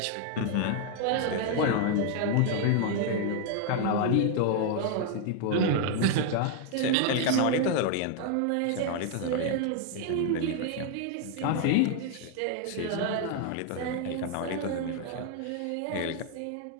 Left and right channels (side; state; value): both; different; correlation 0.00